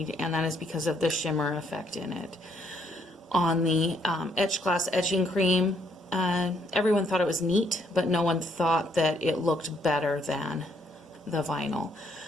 and that is because of the shimmer effect in it. On the etched glass etching cream, everyone thought it was neat, but no one thought that it looked better than the vinyl.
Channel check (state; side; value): normal; both; correlation 0.70